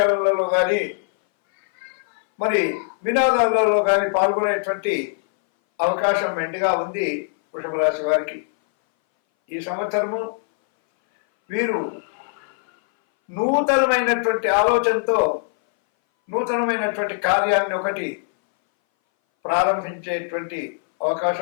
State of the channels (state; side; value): silent; right; 60 dB below the other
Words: కానీ, మరి వినోదాలలో కానీ పాల్గొనేటువంటి అవకాశం మెండుగా ఉంది వృషభ రాశి వారికి. ఈ సంవత్సరము వీరు నూతనమైనటువంటి ఆలోచనతో నూతనమైనటువంటి కార్యాన్ని ఒకటి ప్రారంభించేటువంటి